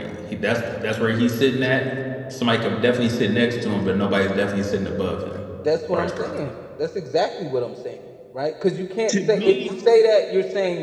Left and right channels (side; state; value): both; identical; correlation 1.00